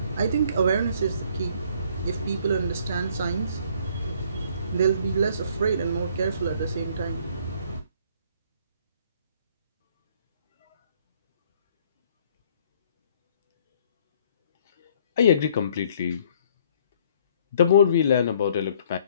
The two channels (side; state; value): both; inverted; correlation -0.60